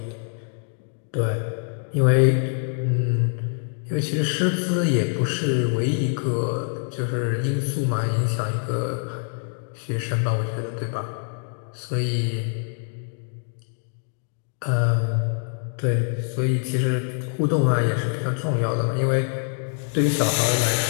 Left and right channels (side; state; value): right; silent; 56 dB below the other